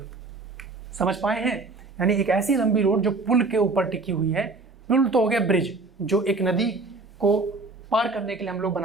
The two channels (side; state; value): left; quieter; 3.6 dB